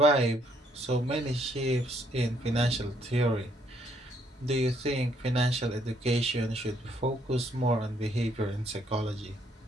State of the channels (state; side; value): normal; both; correlation 0.69